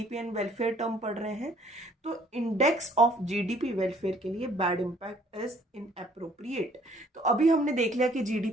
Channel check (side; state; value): both; normal; correlation 0.60